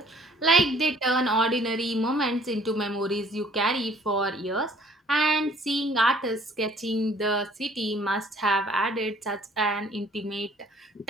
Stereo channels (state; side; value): normal; both; correlation 0.57